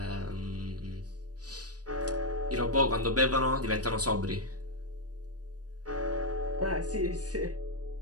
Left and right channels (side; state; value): left; late; 0.68 ms